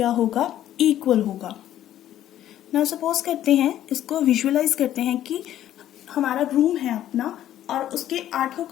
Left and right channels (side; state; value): right; quieter; 12.1 dB